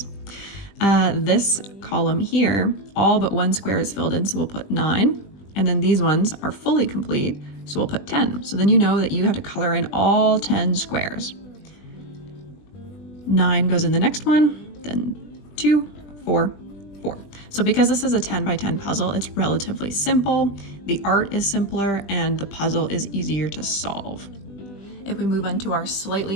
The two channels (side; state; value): right; late; 20 ms